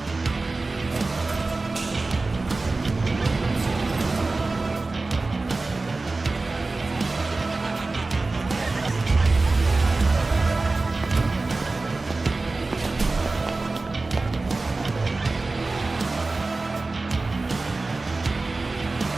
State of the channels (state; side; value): quieter; left; 3.5 dB